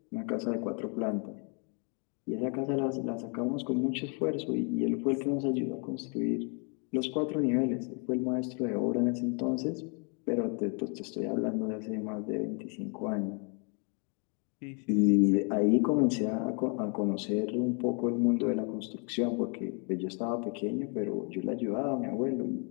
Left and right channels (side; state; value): right; quieter; 37.1 dB